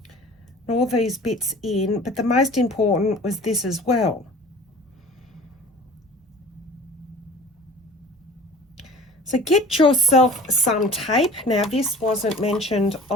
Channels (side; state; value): both; normal; correlation 0.44